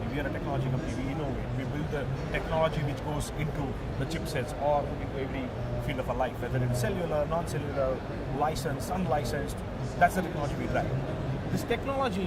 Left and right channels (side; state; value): both; identical; correlation 1.00